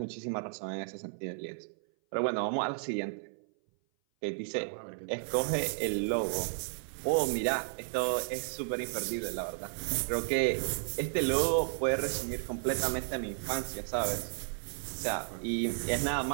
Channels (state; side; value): silent; left; 56 dB below the other